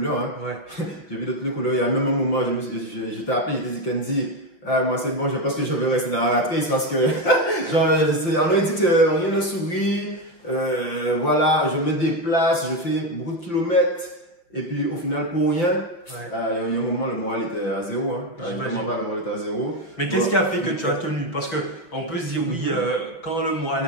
Hein. Ouais. J'ai vu de toutes les couleurs. Il y a même un moment, j'étais appelé, j'étais dit, Kenzie, moi c'est bon, je pense que je vais rester dans la ratrice parce que, genre, on a dit que rien ne sourit. Voilà, je me déplace, je fais beaucoup de kilomètres. Et puis au final, pour rien, il y a un moment, le moral était à zéro. Hein. Le moral était à zéro. Mais qu'est-ce qui a fait que tu as tenu? Parce qu'on peut se dire, oui, quand le moral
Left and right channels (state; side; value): late; right; 5.6 ms